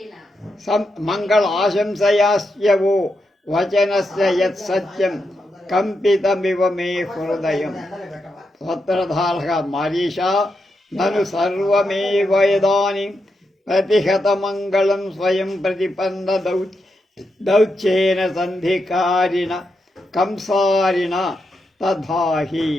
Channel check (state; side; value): normal; both; correlation 0.85